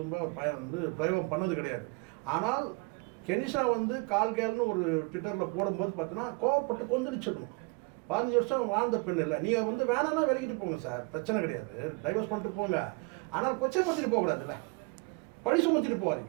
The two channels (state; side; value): quieter; left; 29.1 dB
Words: அவர் வந்து பிரயோகம் பண்ணது கிடையாது. ஆனால் கெனிஷா வந்து கால்கேல்னு ஒரு ட்விட்டரில் போடும்போது பார்த்தீங்கன்னா கோவப்பட்டு கொந்தளிச்சிருக்கணும். 15 வருஷம் வாழ்ந்த பெண் இல்லை. நீங்கள் வந்து வேணான்னா விலகிட்டு போங்க சார், பிரச்சனை கிடையாது, டைவர்ஸ் பண்ணிட்டு போங்க. ஆனால் கொச்சைப்படுத்திட்டு போகக்கூடாது, இல்லை பழி சுமத்திட்டு